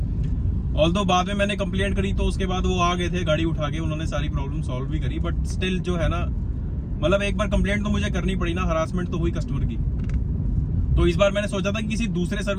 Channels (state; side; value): identical; both; correlation 1.00